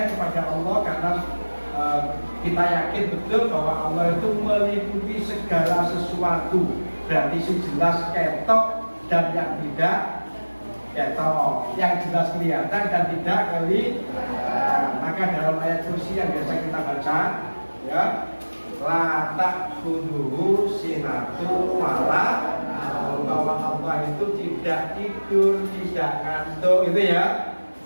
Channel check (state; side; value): inverted; both; correlation -1.00